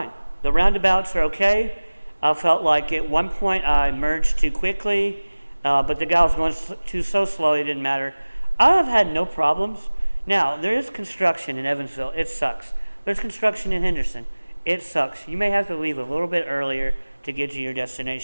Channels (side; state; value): both; inverted; correlation -1.00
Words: The roundabouts are okay. I felt like at one point I merged too quickly, but the guy was going so slow it didn't matter. I have had no problems. Now, there is construction in Evansville. It sucks. There's construction in Henderson. It sucks. You may have to leave a little bit earlier to get to your